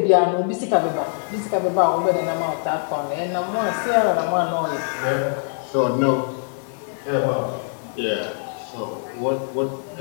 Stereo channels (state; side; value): silent; right; digital silence